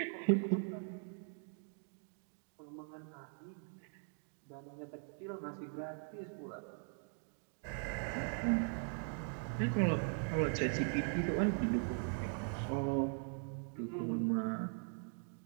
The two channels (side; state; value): left; silent; 51 dB below the other